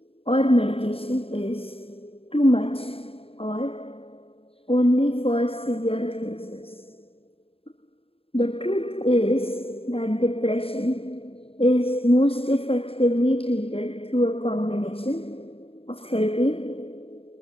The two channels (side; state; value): right; late; 0.27 ms